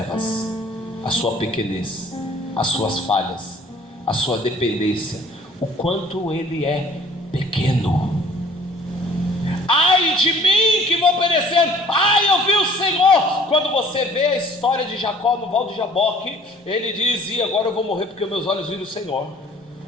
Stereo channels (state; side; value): normal; both; correlation 0.54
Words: a sua pequenez, as suas falhas, a sua dependência, o quanto ele é pequeno. Ai de mim que vou perecendo, ai eu vi o Senhor. Quando você vê a história de Jacó no Val de Jaboque, ele diz: e agora eu vou morrer porque meus olhos viram o Senhor.